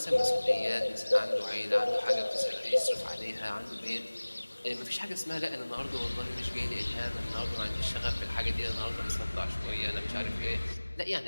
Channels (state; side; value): inverted; both; correlation -1.00